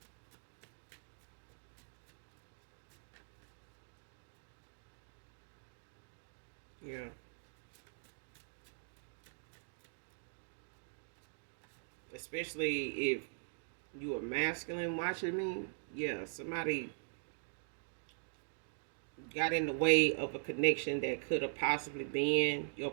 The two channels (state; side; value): silent; left; digital silence